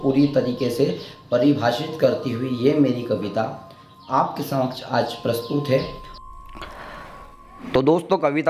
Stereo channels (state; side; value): identical; both; correlation 1.00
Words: पूरी तरीके से परिभाषित करती हुई ये मेरी कविता आपके समक्ष आज प्रस्तुत है। तो दोस्तों